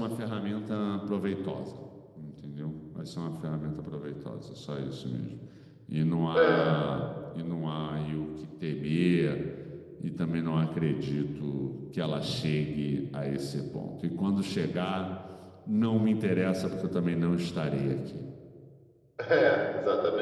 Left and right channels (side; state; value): both; identical; correlation 1.00